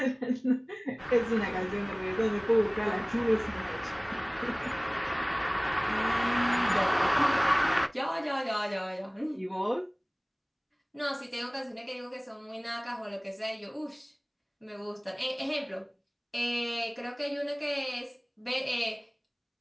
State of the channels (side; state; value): both; identical; correlation 1.00